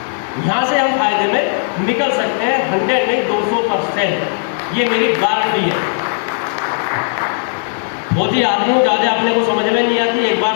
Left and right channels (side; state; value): right; silent; 69 dB below the other